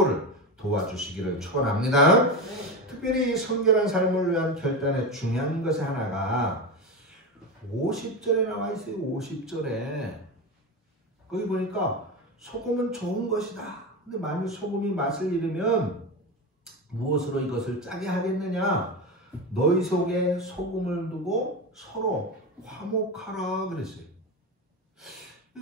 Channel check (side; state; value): both; normal; correlation 0.19